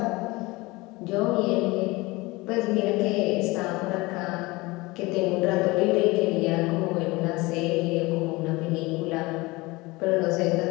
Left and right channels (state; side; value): quieter; right; 22.5 dB